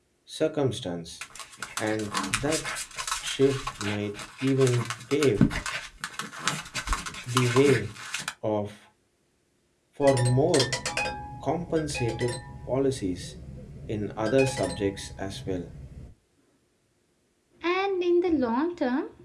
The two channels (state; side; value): identical; both; correlation 1.00